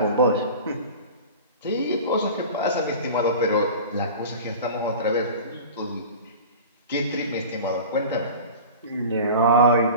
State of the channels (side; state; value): both; inverted; correlation -0.36